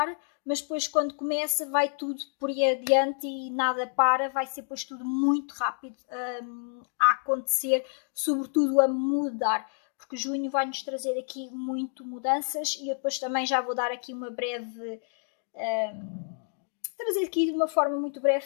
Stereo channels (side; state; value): right; silent; 58 dB below the other